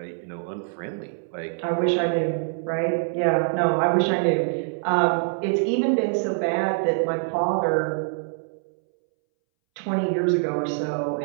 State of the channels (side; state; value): left; silent; 62 dB below the other